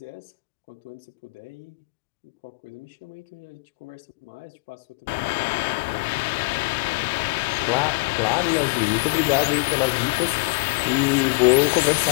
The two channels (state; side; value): quieter; right; 30.7 dB